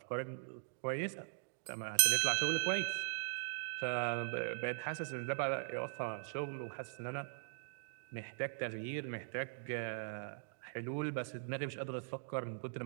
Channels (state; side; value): silent; left; digital silence